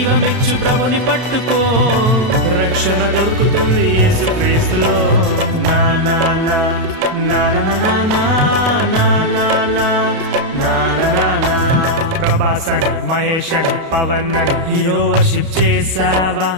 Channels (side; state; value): left; late; 32 ms